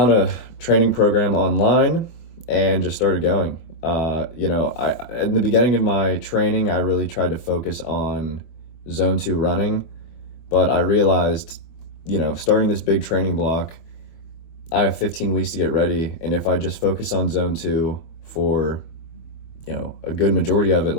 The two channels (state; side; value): late; right; 24 ms